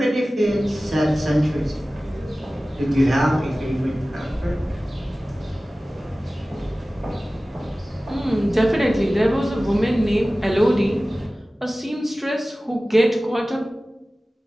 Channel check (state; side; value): normal; both; correlation 0.97